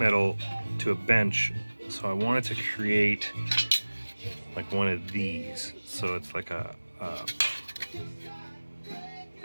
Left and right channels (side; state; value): both; inverted; correlation -1.00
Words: to a bench, so I wanted to create like one of these. So it's like a